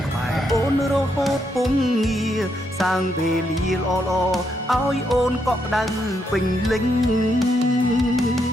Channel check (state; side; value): normal; both; correlation 0.78